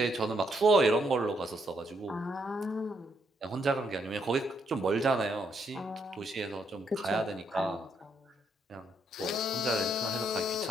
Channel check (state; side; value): normal; both; correlation 0.75